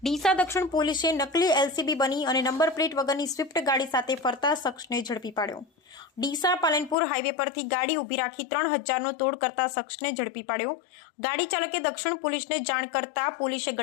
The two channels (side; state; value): right; drops out; at 7.0 s